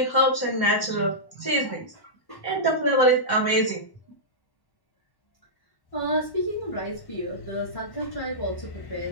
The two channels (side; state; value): right; late; 1.1 ms